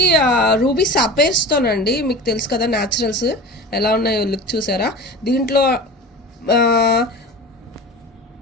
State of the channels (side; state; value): both; normal; correlation 0.35